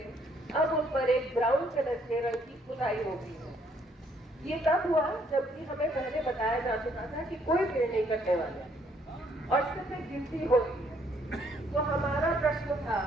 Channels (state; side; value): normal; both; correlation 0.67